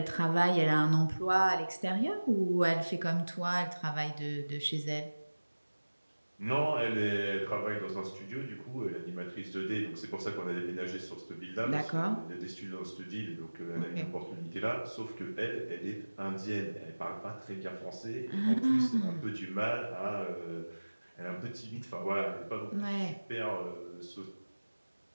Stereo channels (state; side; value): inverted; both; correlation -1.00